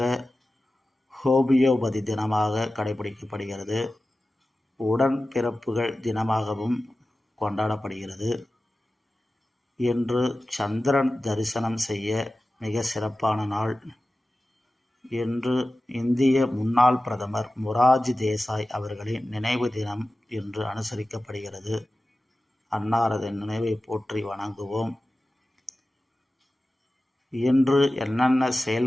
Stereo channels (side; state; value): both; normal; correlation 0.95